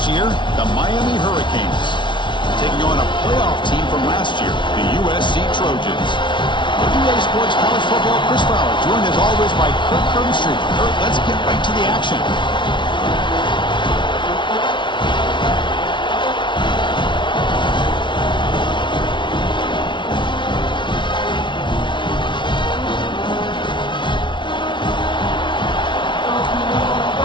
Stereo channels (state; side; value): late; right; 0.24 ms